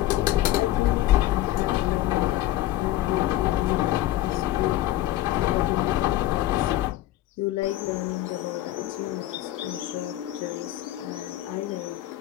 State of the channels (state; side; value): quieter; right; 15.0 dB